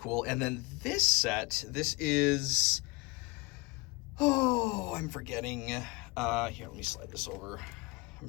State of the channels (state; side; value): quieter; right; 26.6 dB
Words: And then this set, this is, I'm forgetting. Here, let me slide this over.